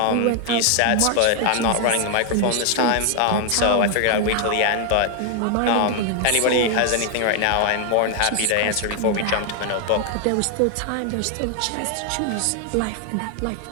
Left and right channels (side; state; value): both; different; correlation 0.00